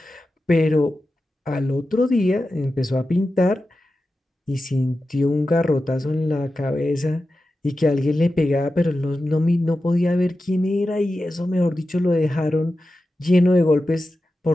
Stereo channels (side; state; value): both; normal; correlation 0.92